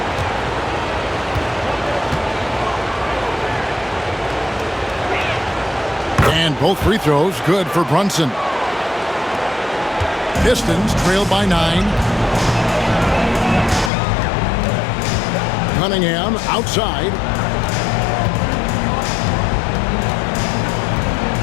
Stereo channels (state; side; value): drops out; right; at 13.9 s